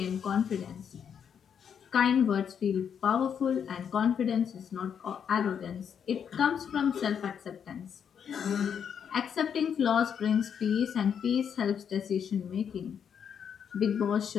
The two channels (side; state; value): right; quieter; 7.7 dB